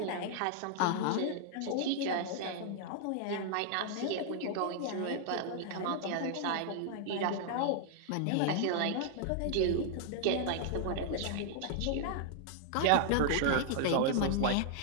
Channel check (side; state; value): both; different; correlation -0.01